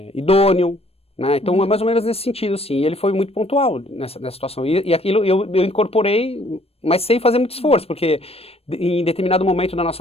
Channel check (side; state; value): right; late; 0.28 ms